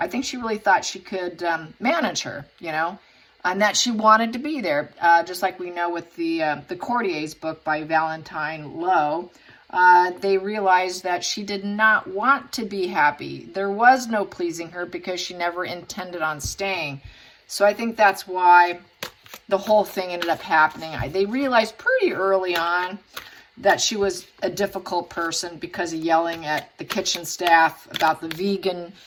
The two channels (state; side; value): identical; both; correlation 1.00